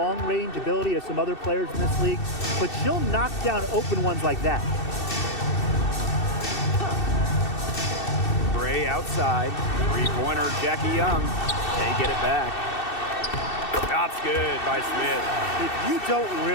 ability of some other players in this league, but she'll knock down open ones like that. Gray outside. Three-pointer, Jackie Young. They get it back. Shot's good by Smith. If you don't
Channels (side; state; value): right; late; 2.7 ms